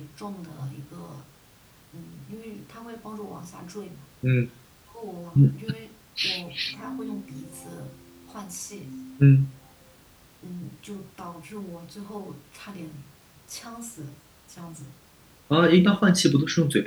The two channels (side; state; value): both; identical; correlation 1.00